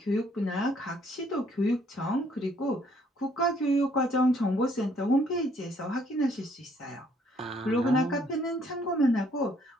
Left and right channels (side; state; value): both; normal; correlation 0.65